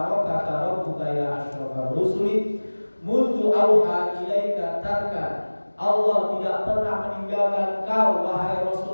rabbuka ya asyrafar rusuli mundu auha ilaika tarkan. Allah tidak pernah meninggalkan kau wahai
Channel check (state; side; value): inverted; both; correlation -1.00